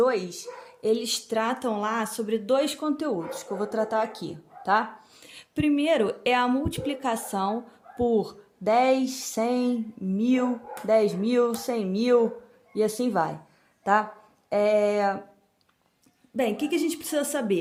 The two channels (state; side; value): identical; both; correlation 1.00